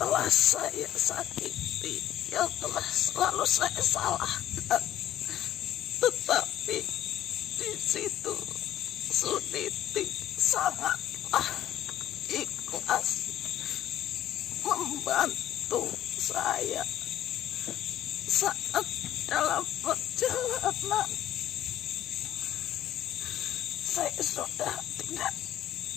saya sakiti, yang telah selalu saya salahkan. Tetapi di situ Suniti sangatlah ikhlas membantu saya saat dalam perjalanan. Saya sudah tidak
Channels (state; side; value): quieter; right; 12.3 dB